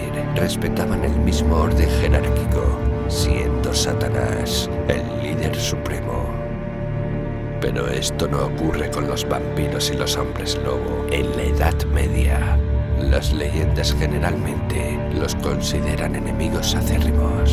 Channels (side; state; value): both; identical; correlation 1.00